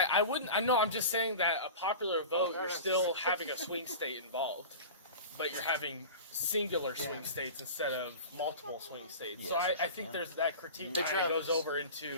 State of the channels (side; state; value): both; inverted; correlation -0.33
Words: wouldn't. I know. I'm just saying that a popular vote, you're still having a swing state involved, but you're having singular swing states instead of multiple swing states. Yes, so yes, I I think can. there's that critique Hey, that Travis, goes over into can